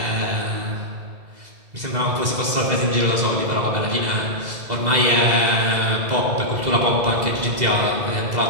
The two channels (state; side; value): late; left; 2.0 ms